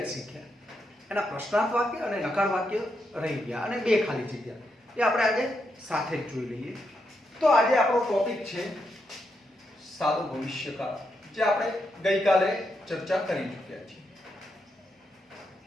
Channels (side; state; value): both; normal; correlation 0.82